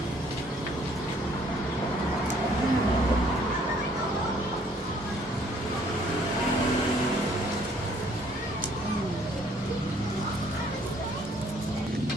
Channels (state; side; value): normal; both; correlation 0.62